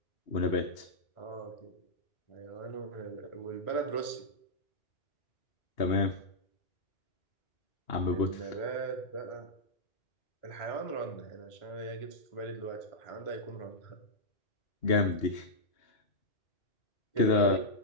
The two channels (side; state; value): right; late; 2.8 ms